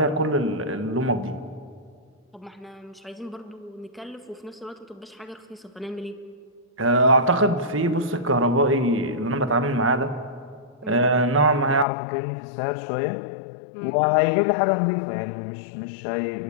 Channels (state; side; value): drops out; right; at 11.9 s